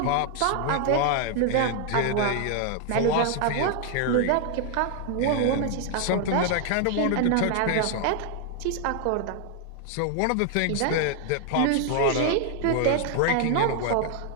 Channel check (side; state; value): both; different; correlation 0.00